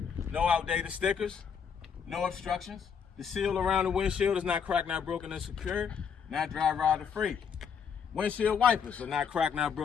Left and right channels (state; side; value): quieter; right; 6.9 dB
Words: No outdated stickers, no obstructions. The seal around the windshield is not cracked, not broken, and secure. Not dry rotted free. Windshield wipers are not cracked, not